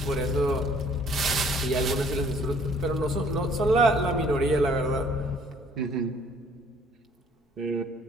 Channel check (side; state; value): both; normal; correlation 0.58